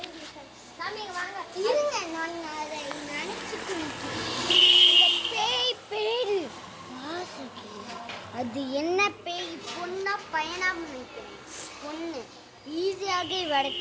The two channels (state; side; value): identical; both; correlation 1.00